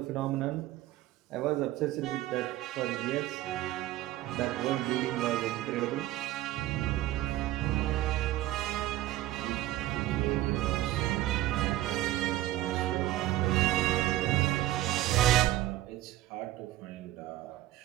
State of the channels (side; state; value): left; quieter; 15.0 dB